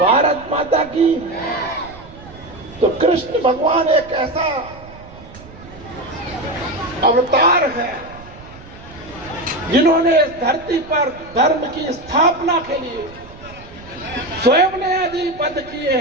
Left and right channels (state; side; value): noise; right; rumble, 19 dB below the sound